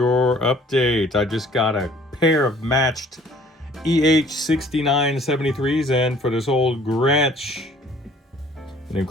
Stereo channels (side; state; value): both; normal; correlation 0.55